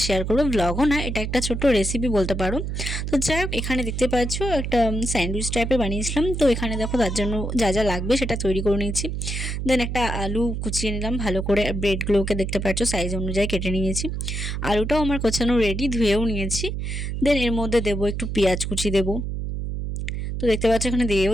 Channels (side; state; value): right; noise; hum, 3 dB below the sound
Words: শেয়ার করবো। ভ্লগও না, এটা একটা ছোট্ট রেসিপি বলতে পারো। তো যাই হোক, এখানে দেখতে পাচ্ছ একটা স্যান্ডউইচ টাইপের বানিয়েছিলাম। তো এখানে দেখো তার জন্য যা যা লাগবে সেটা তৈরি করে নিয়েছি। দেন একটা আলু কুচিয়ে নিলাম ভালো করে, ব্রেডগুলোকে দেখতে পাচ্ছ সাইজ অনুযায়ী কেটে নিয়েছি। আলুটাও আমার কোচানো রেডি, ধুয়েও নিয়েছি। দেন এর মধ্যে দেবো একটু পেঁয়াজ কুচি দেবো। তো দেখতে পাচ্ছ এখানে